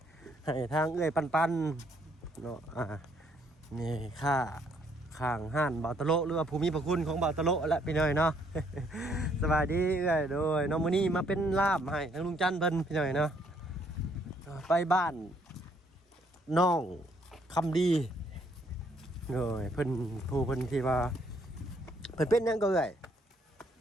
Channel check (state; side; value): normal; both; correlation 0.68